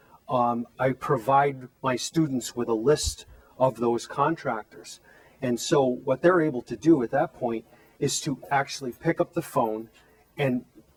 I provide my students with a list of those contractors. And so what they're able to do at that point is to actually pick up the phone and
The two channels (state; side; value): identical; both; correlation 1.00